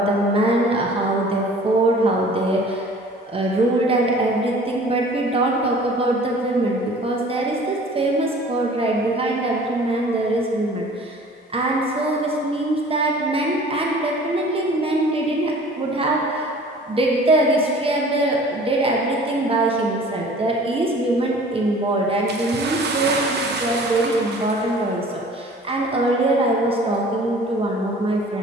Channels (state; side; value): normal; both; correlation 0.47